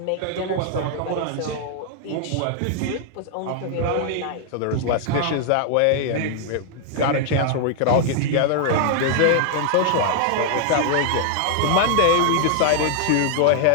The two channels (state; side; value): different; both; correlation 0.00